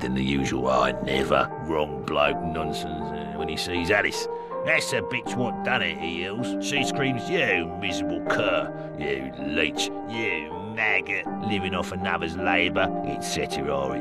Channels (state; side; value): identical; both; correlation 1.00